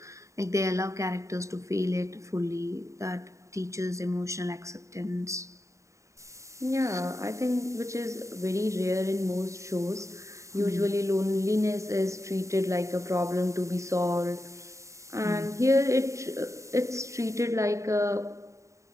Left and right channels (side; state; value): left; late; 0.15 ms